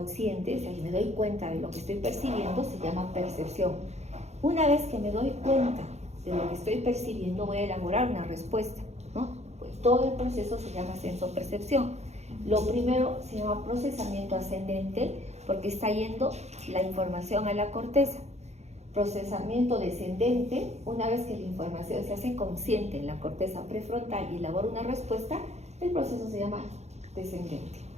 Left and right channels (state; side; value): late; left; 0.32 ms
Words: o sea, me doy cuenta de lo que estoy percibiendo, se llama percepción. Una vez que me doy cuenta de lo que estoy percibiendo, voy a elaborar una respuesta, ¿no? Pues todo el proceso se llama sensopercepción. Lo primero se llama procesamiento ascendente, porque está yendo la información a la corteza. Procesamiento descendente, una vez que la información se hace consciente en la corteza prefrontal y elabora una respuesta, el proceso se llama descendente.